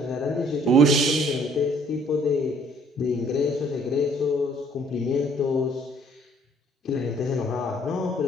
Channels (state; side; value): normal; both; correlation 0.60